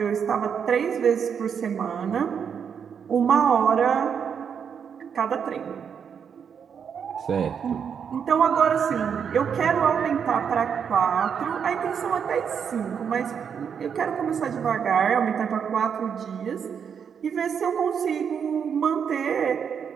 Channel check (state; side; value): quieter; left; 7.2 dB